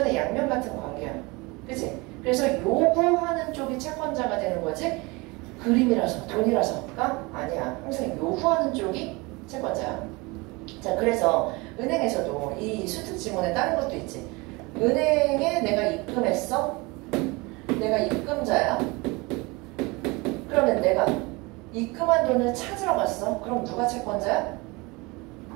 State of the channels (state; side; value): quieter; left; 25.3 dB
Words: 양면 같은 관계야. 그치? 그래서 요구하는 쪽이 채권자가 되는 거지 그림이라서 돈이라서가 아니야. 항상 요구하는 쪽이 채권자야. 자, 그래서 은행에서도 이 수특 지문에 다른 것도 있지. 은행에 내가 입금했어? 내가 입금자야? 그러면 내가 입금한 돈을 찾으러 갔어? 그럼 누가 채권자야?